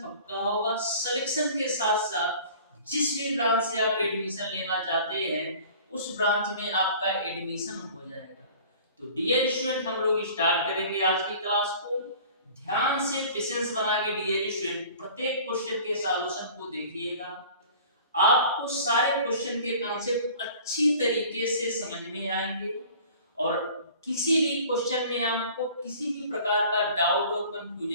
पक्का होगा। सिलेक्शन के साथ साथ जिस भी ब्रांच से आप एडमिशन लेना चाहते हैं, उस ब्रांच में आपका एडमिशन हो जाएगा। तो डियर स्टूडेंट, हम लोग स्टार्ट करेंगे आज की क्लास को। ध्यान से पेशेंस बना के डियर स्टूडेंट प्रत्येक क्वेश्चन के सॉल्यूशन को देखिएगा। आपको सारे क्वेश्चन के कॉन्सेप्ट अच्छी तरीके से समझ में आएंगे और किसी भी क्वेश्चन में आपको किसी भी प्रकार का डाउट और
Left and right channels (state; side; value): inverted; both; correlation -0.46